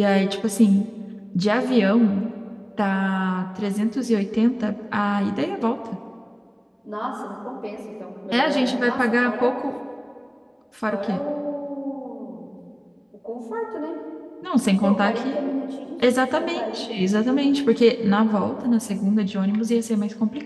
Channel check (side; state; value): both; identical; correlation 1.00